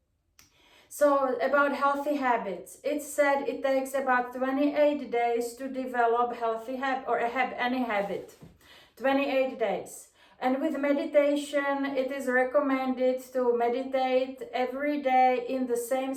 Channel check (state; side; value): identical; both; correlation 1.00